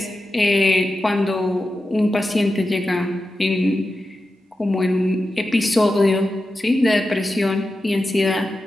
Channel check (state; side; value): normal; both; correlation 0.91